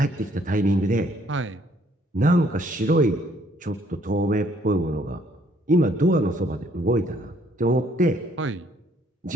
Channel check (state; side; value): normal; both; correlation 0.65